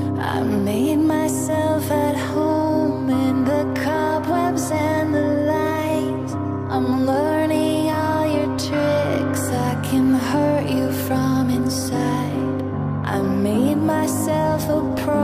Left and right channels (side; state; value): both; identical; correlation 1.00